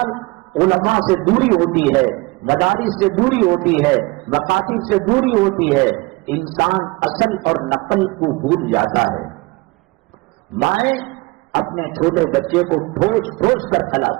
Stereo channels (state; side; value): quieter; left; 24.4 dB